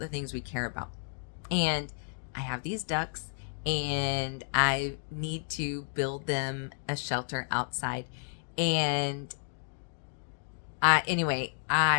things we care about. And I have these ducks and I need to build them a shelter outside. And anyway,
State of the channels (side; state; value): right; silent; 57 dB below the other